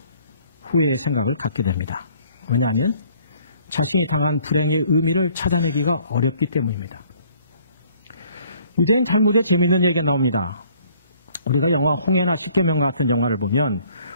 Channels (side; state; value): both; inverted; correlation -0.60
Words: 후회의 생각을 갖게 됩니다. 왜냐하면 자신이 당한 불행의 의미를 찾아내기가 어렵기 때문입니다. 유대인 탈무드에 재미있는 얘기가 나옵니다. 우리가 영화 홍해나 십계명 같은 영화를 보면